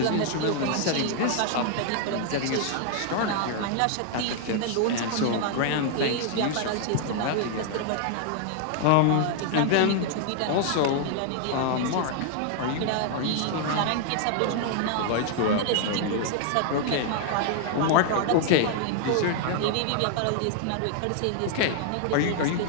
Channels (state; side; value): different; both; correlation 0.00